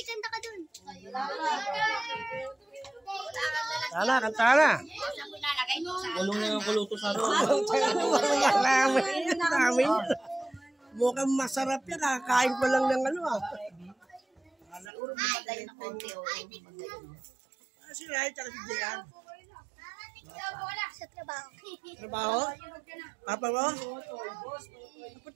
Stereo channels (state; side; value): drops out; left; at 14.9 s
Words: kanta ka dun. Tala, kanta na. Kulong na yung kuluto sa roon. Namin. Mukhang masarap yan. Kakain ko lang ng ano ah. Si Rai, tsaka si Jian. Sa trabaho. Trabaho? Papa mo? Ba't